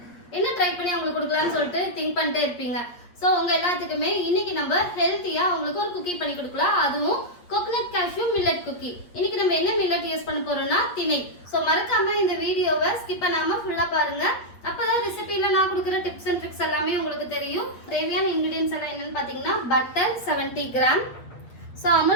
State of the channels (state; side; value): late; right; 8.4 ms